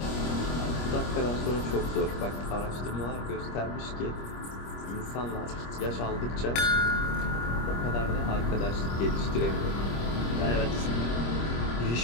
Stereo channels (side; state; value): right; late; 25 ms